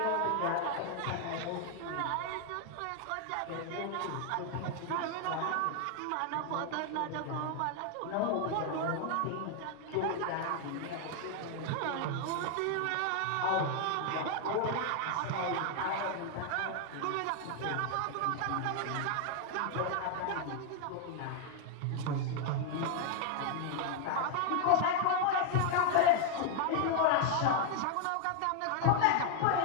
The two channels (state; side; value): different; both; correlation 0.00